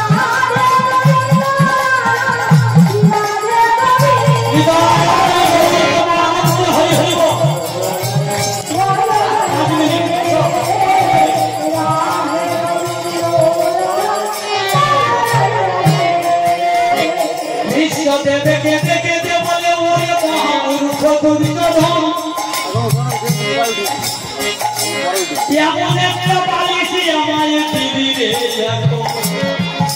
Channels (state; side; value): identical; both; correlation 1.00